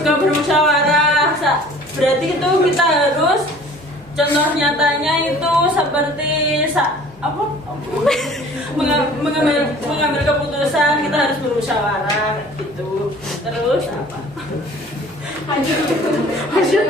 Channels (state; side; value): normal; both; correlation 0.49